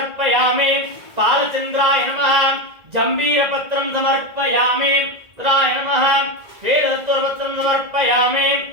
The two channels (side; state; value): left; late; 1.9 ms